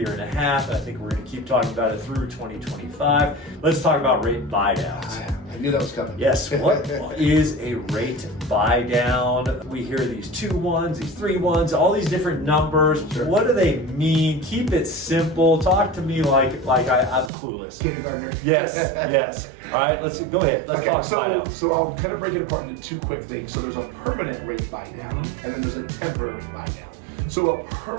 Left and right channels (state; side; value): drops out; left; at 17.3 s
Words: a half. I think we're going to keep talking about it through 2025. Let's talk about rate buydowns. I knew that was coming. Yes, what is a rate buy down? We hear these 2-1s, these 3-1s, all these different numbers. Sure. What do they mean? Keep it simple. Talk to me like I'm clueless. Kindergartner. Yes, yes. All right, let's go ahead. Let's talk buy down. So I'll kind of break it apart into two quick things. So there's a permanent rate buy down, and then there's a temporary buy down. So a